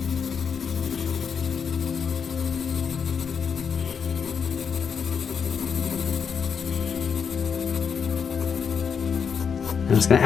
I'm just going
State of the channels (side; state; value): right; quieter; 6.6 dB